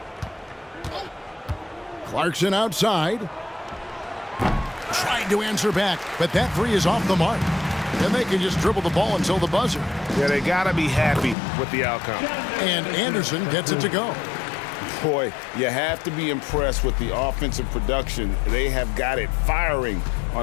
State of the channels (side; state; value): right; drops out; at 11.4 s